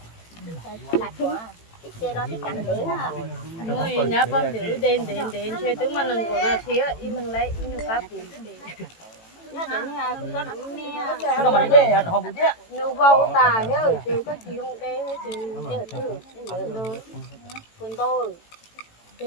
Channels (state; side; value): late; right; 18 ms